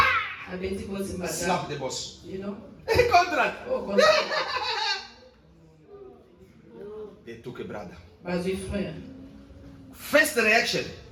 Slap the boss. You know? Contract. Oh, contrat. They took a brother. Bazui frère. First reaction.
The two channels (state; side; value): identical; both; correlation 1.00